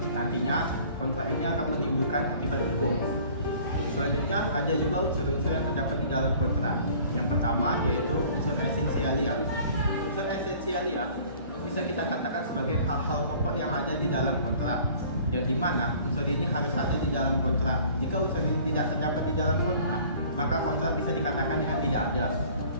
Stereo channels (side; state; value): both; inverted; correlation -0.51